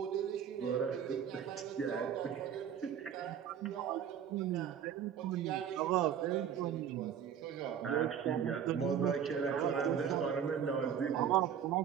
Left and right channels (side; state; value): left; quieter; 8.6 dB